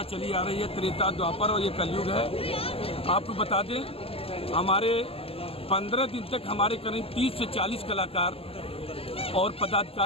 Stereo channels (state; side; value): late; right; 0.28 ms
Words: चली आ रही है। त्रेता, द्वापर और ये कलयुग है। आपको बता दें, हमारे 15 दिन तक हमारे करीब 30 से 40 कलाकार और